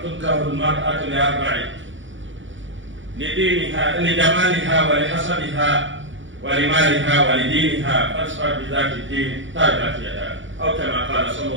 تنكح المرأة لأربع: لدينها لجمالها ولحسبها ولمالها ولدينها فاصفر بذات الدين تربت يداك، أو كما قال صلى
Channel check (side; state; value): left; late; 0.55 ms